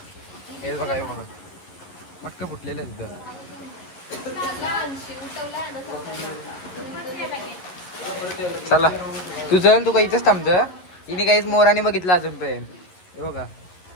हे बघा हे बघा मटका फुटलेलं आहे तिथं. चला तू चल, तू काही इथंच थांबत. हिने काहीच मोराने बघितलं अजूनपर्यंत. हे बघा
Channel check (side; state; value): right; late; 11 ms